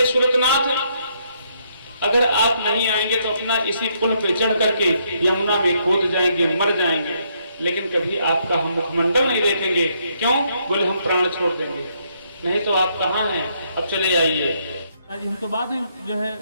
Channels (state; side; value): inverted; both; correlation -0.73